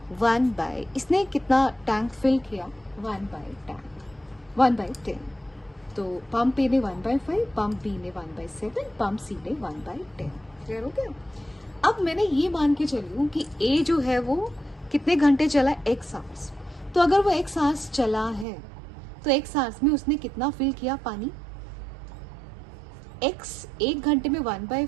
इसने कितना टैंक फिल किया, 1/10। तो पंप ए ने 1/5, पंप बी ने 1/7, पंप सी ने 1/10। क्लियर हो गया? अब मैंने ये मान के चली हूँ कि ए जो है वो कितने घंटे चला, x hours। तो अगर वो x hours चला है तो x hours में उसने कितना फिल किया पानी, x 1 घंटे में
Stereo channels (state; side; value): drops out; left; at 18.4 s